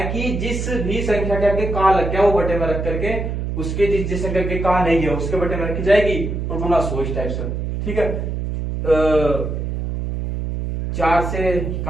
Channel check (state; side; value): noise; right; hum, 3 dB below the sound